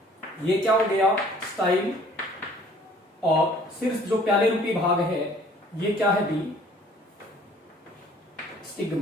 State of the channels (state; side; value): normal; both; correlation 0.55